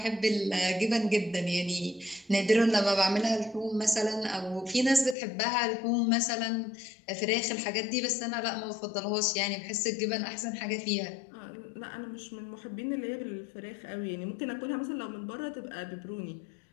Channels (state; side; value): drops out; right; at 5.2 s